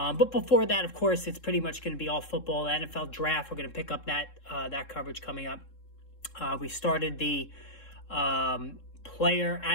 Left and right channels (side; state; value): right; late; 3.7 ms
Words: before that, of course, it's pretty much going to be all football. The NFL draft, we're going to pick up that coverage coming up. We started the player